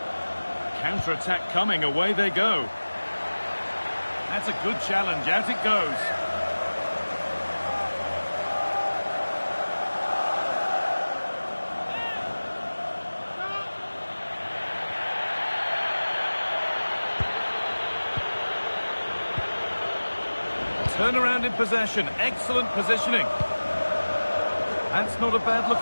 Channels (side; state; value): both; inverted; correlation -1.00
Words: Counter-attack coming, away they go. That's a good challenge, out it goes. Turnaround in possession, excellent positioning. That's not a